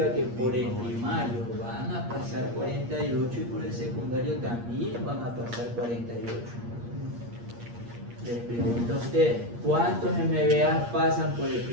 que por el primario van a pasar 48 y por el secundario también van a pasar 48. Les pregunto a ustedes, ¿cuántos MVA pasan por el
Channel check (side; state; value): left; late; 8.5 ms